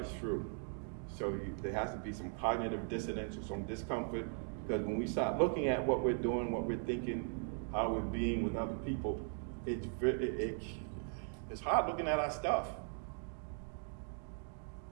through. So there has to be some cognitive dissonance or some discomfort, because when we start looking at what we're doing, what we're thinking, how we're being with other people, it's hard looking at our stuff.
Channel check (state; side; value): silent; left; 52 dB below the other